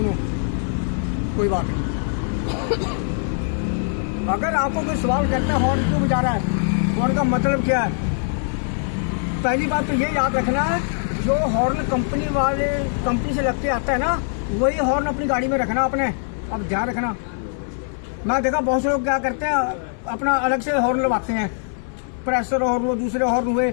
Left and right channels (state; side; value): silent; right; 57 dB below the other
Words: कोई बात नहीं, अगर आपको कोई सवाल करता है हॉर्न क्यों बजा रहा है, हॉर्न का मतलब क्या है, पहली बात तो ये याद रखना है, जो हॉर्न कंपनी से लगते आता है ना, वही हॉर्न अपनी गाड़ी में रखना आपने। अब ध्यान रखना, मैं देखा बहुत से लोग क्या करते हैं, अपना अलग से हॉर्न लगवाते हैं, प्रेशर हॉर्न हुए, दूसरे हॉर्न हुए,